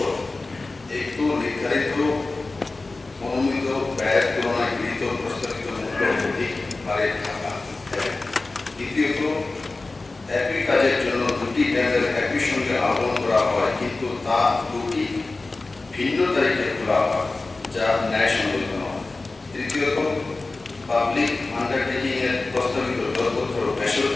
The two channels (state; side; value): quieter; right; 3.4 dB